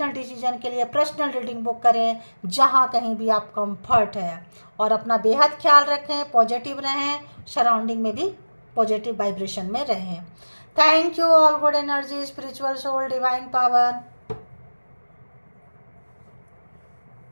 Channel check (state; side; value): inverted; both; correlation -1.00